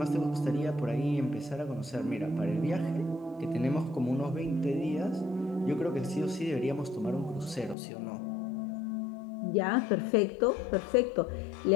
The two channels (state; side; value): drops out; right; at 7.8 s